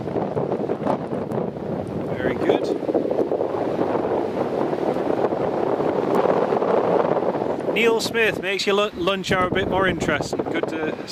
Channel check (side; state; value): both; identical; correlation 1.00